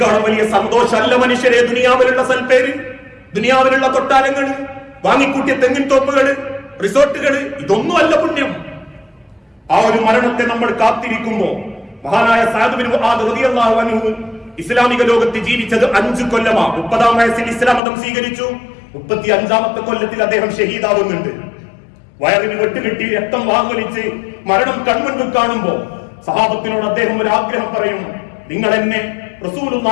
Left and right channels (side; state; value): right; drops out; at 17.8 s